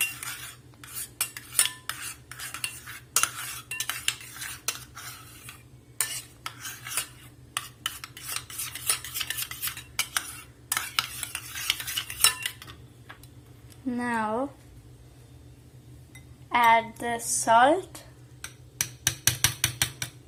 Now add the salt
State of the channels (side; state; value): both; identical; correlation 1.00